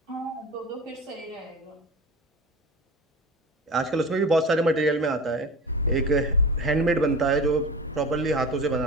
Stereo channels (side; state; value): both; normal; correlation 0.32